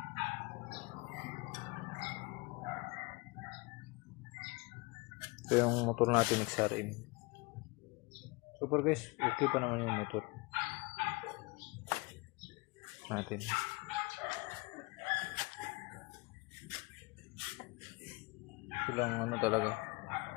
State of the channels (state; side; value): quieter; right; 25.8 dB